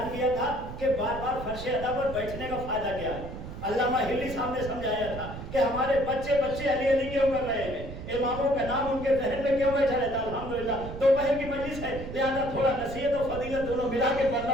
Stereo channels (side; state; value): right; noise; rumble, 10 dB below the sound